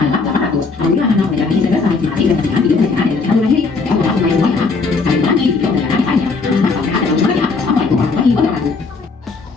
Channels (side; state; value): right; quieter; 4.3 dB